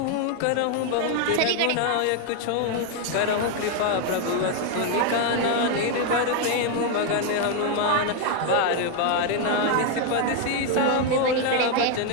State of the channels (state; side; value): different; both; correlation 0.01